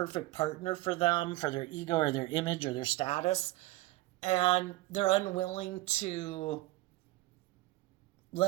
partner for them, for their ego or their image or their status. And they're unwilling to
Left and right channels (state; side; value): quieter; left; 18.7 dB